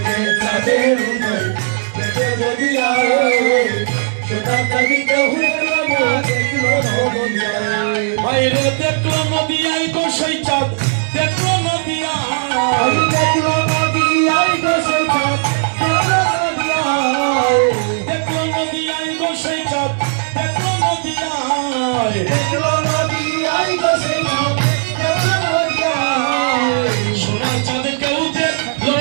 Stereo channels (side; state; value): left; silent; digital silence